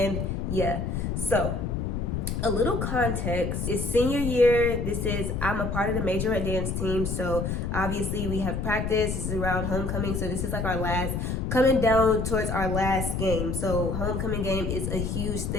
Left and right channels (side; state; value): left; noise; rumble, 1 dB below the sound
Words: yeah. So a little context is senior year. I'm a part of the majorette dance team. So obviously we have practice. This is around homecoming. So this is like coming down towards our last game. So homecoming game is a huge